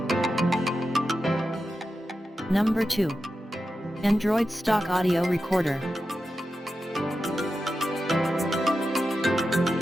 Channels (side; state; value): both; normal; correlation 0.90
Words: Number 2. Android Stock Audio Recorder.